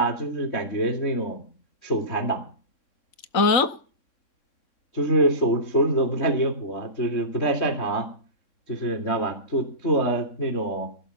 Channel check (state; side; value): late; right; 3.6 ms